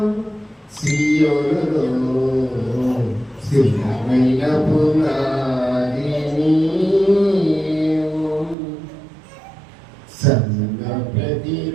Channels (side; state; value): left; drops out; at 8.6 s